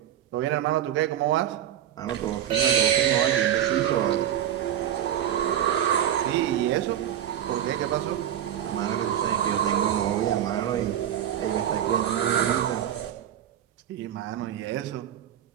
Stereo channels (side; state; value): left; quieter; 10.6 dB